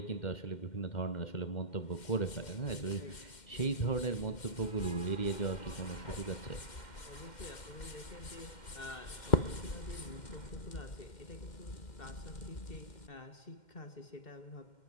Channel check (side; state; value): right; late; 2.1 ms